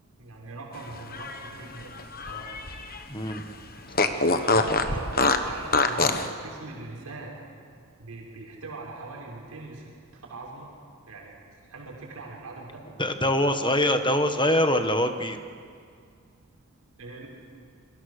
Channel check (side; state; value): both; normal; correlation 0.13